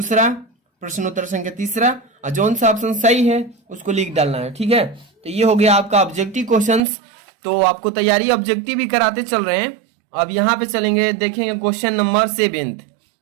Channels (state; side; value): drops out; left; at 6.8 s